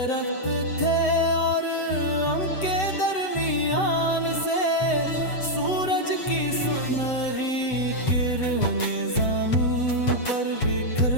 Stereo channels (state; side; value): late; right; 7.9 ms